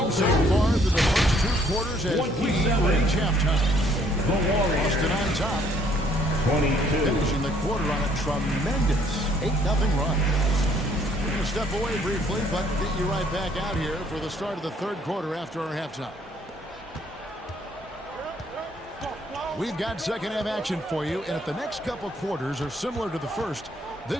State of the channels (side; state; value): both; normal; correlation 0.64